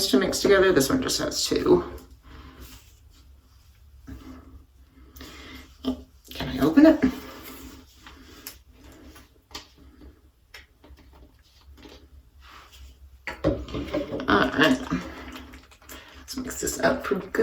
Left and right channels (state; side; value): identical; both; correlation 1.00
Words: to mix together. This one just has 2. Can I open it? All right. Let's mix this up pretty